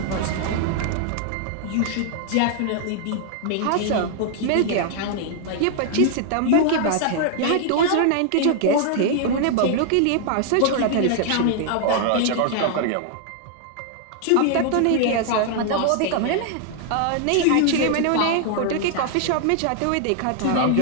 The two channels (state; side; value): different; both; correlation 0.00